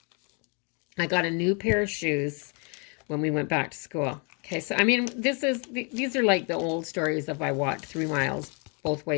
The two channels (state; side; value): quieter; right; 35.3 dB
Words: I got a new pair of shoes when we went back to school. Okay, so I mean, these are like the old stories of I walked 3 miles both